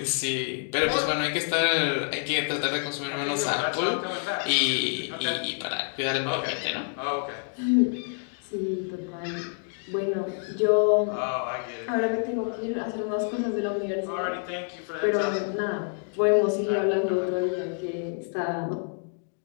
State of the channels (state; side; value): silent; right; 57 dB below the other